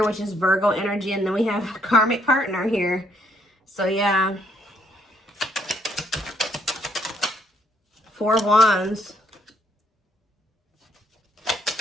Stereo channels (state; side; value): normal; both; correlation 0.70